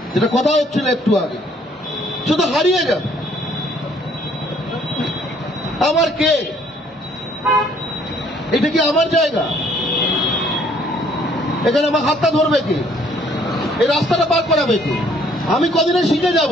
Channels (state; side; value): normal; both; correlation 0.62